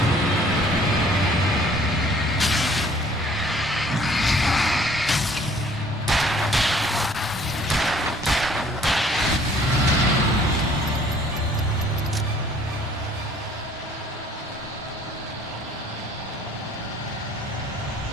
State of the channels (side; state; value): both; normal; correlation 0.57